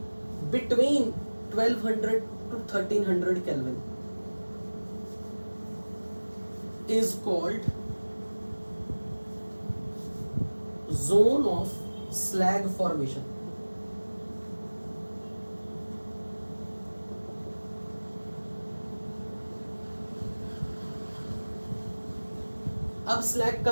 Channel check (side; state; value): both; inverted; correlation -1.00